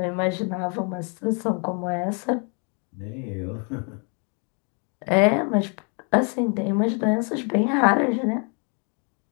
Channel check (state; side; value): quieter; right; 36.7 dB